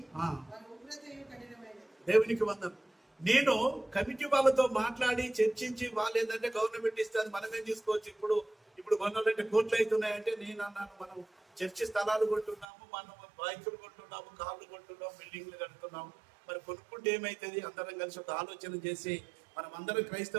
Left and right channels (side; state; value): left; drops out; at 12.7 s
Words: ఆ. వారి ఉగ్రతయు కఠినమైనది. దేవునికి వందనం. నేను కమిటీ వాళ్ళతో మాట్లాడి చర్చించి వాళ్ళు ఏంటంటే గవర్నమెంట్ ఇస్తుంది మనమేం తీసుకోవచ్చు. ఇప్పుడు కొనాలంటే కోట్లు అవుతున్నాయంటే నేను అన్నాను, మనం చర్చి స్థలాలు కొంటున్నాము, మనం బైకులు కొంటున్నాము, కార్లు కొంటున్నాము, బిల్డింగ్లు కడుతున్నాము. మరి కొనుక్కుంటే ఏమైతుంది? అందరం కలిసి ఒక ఆలోచన చేసి మనం అందరం